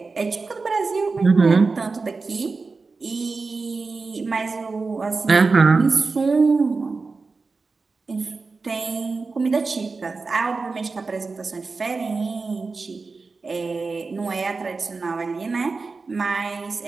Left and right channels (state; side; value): quieter; left; 4.2 dB